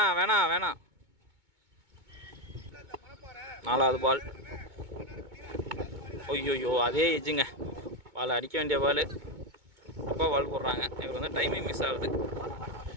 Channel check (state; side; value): late; left; 2.2 ms